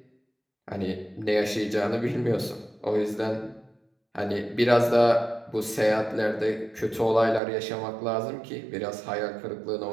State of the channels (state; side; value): drops out; left; at 7.4 s